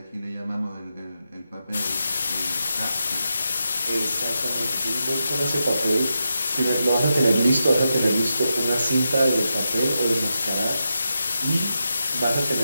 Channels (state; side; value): inverted; both; correlation -0.87